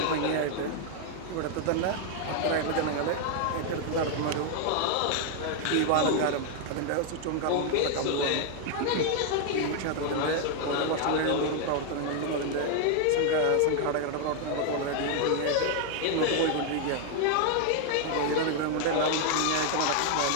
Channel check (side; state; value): both; different; correlation 0.00